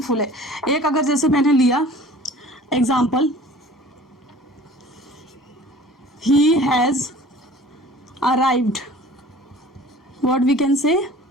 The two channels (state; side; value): normal; both; correlation 0.46